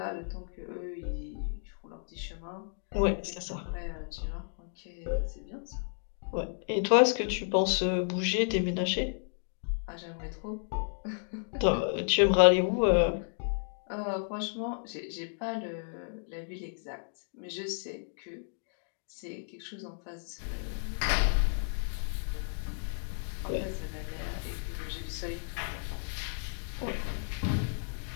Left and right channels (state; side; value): silent; right; digital silence